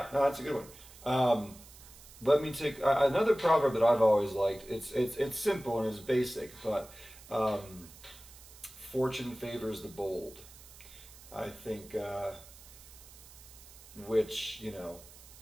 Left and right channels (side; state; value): right; noise; hiss, 20 dB below the sound